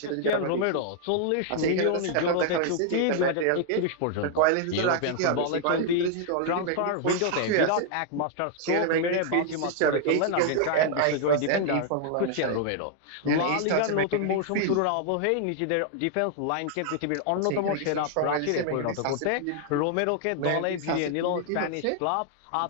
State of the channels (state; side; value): different; both; correlation 0.00